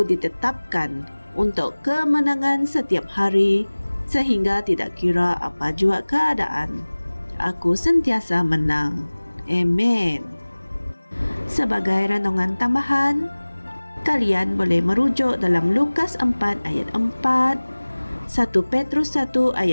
ditetapkan untuk kemenangan setiap hari, sehingga tidak kira apa jua keadaan, aku sentiasa menang. Amen. Sebagai renungan tambahan, kalian boleh merujuk dalam Lukas 4 ayat 4, 1 Petrus 1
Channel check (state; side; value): inverted; both; correlation -1.00